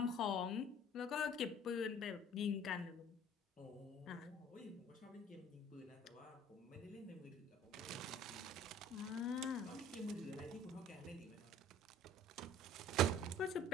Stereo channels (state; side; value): normal; both; correlation 0.49